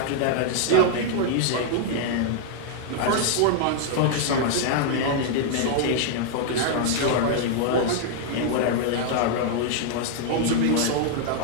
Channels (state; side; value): different; both; correlation 0.00